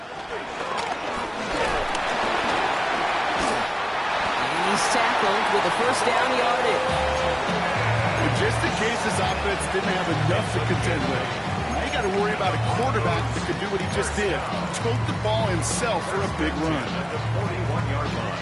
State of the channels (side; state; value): both; identical; correlation 1.00